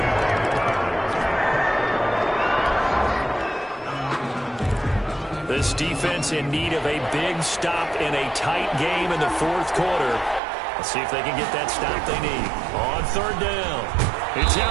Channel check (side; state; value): left; drops out; at 10.4 s